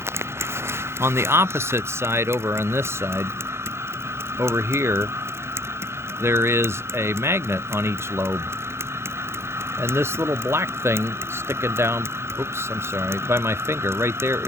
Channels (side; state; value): left; late; 0.12 ms